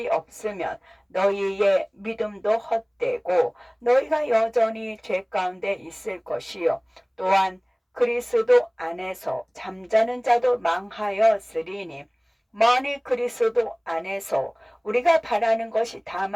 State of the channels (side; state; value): both; identical; correlation 1.00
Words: 없으면 너희의 믿음도 헛되고 너희가 여전히 죄 가운데 있을 것이요. 또한 그리스도 안에서 잠자는 자도 망하였으리니 만일 그리스도 안에서 우리가 바라는 것이